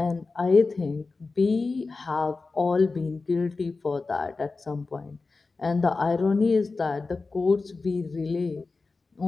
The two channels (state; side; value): quieter; right; 3.9 dB